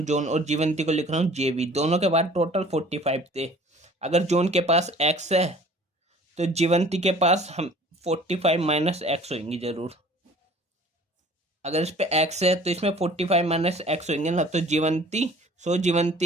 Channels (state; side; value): normal; both; correlation 0.49